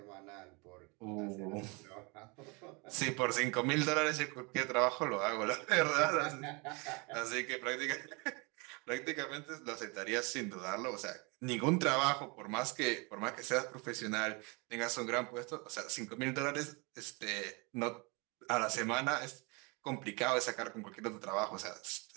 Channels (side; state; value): left; quieter; 29.6 dB